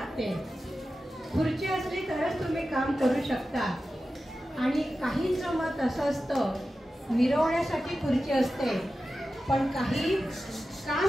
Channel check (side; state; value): both; normal; correlation 0.93